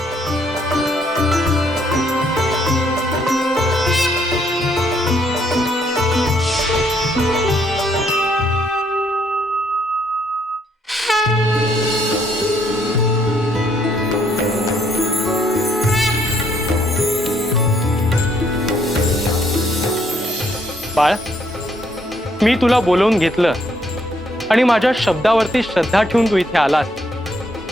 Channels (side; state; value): both; normal; correlation 0.70